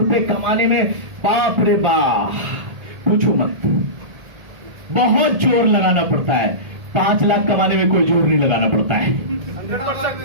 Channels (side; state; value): left; late; 1.8 ms